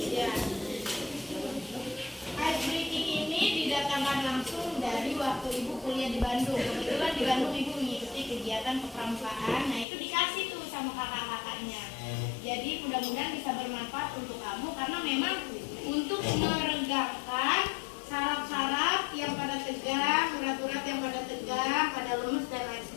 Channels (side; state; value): right; drops out; at 9.9 s